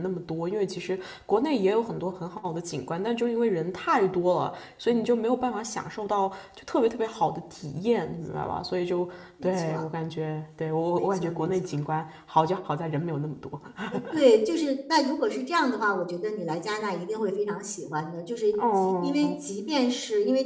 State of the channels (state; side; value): identical; both; correlation 1.00